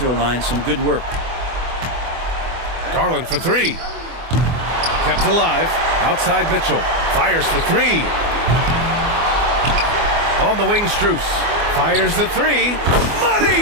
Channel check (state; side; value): late; left; 24 ms